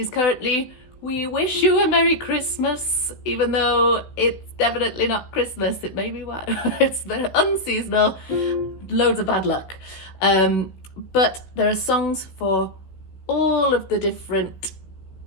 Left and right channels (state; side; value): late; right; 16 ms